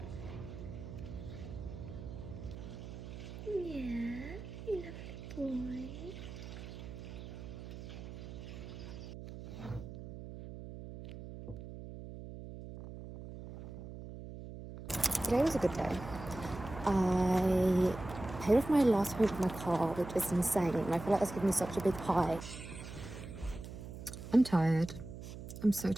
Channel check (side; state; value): right; noise; hum, 11 dB below the sound